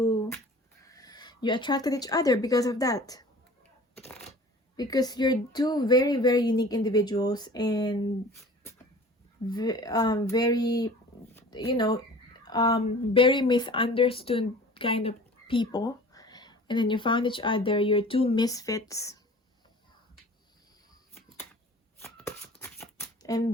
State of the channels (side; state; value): both; normal; correlation 0.44